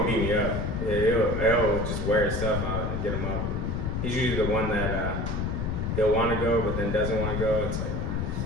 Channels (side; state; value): left; noise; rumble, 1 dB below the sound